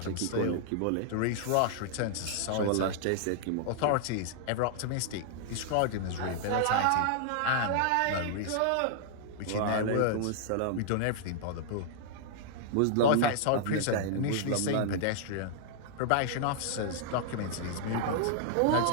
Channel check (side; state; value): both; different; correlation -0.01